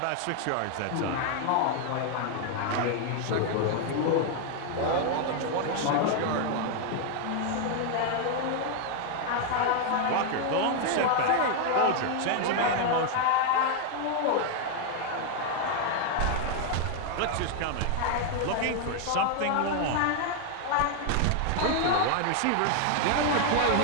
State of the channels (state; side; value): different; both; correlation 0.00